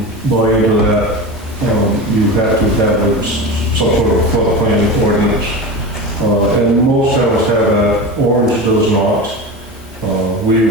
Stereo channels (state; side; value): normal; both; correlation 0.26